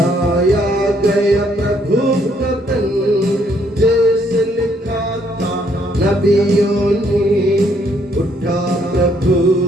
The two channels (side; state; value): both; normal; correlation 0.69